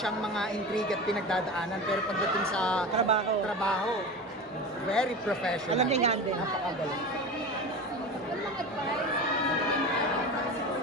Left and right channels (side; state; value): both; normal; correlation 0.29